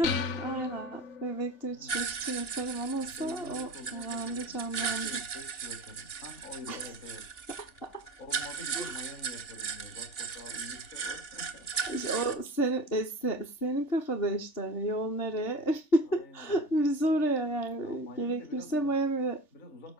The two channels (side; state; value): right; late; 3.4 ms